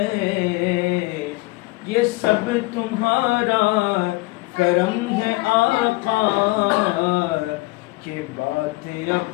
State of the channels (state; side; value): quieter; right; 22.3 dB